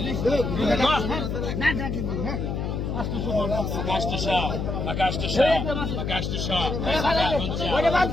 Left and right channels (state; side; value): noise; left; hum, 2 dB below the sound